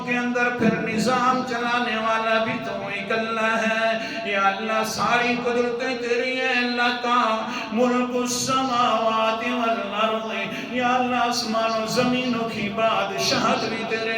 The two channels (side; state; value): both; identical; correlation 1.00